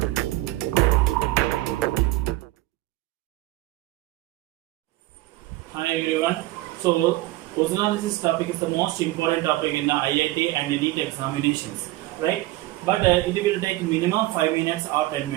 Hi everyone. So ozonolysis topic is the most important topic in the IIT and NEET examinations, right? But it will take minimum 5 minutes or 10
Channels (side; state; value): left; quieter; 17.8 dB